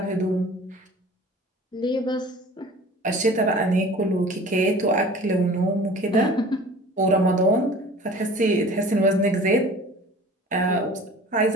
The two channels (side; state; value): both; normal; correlation 0.44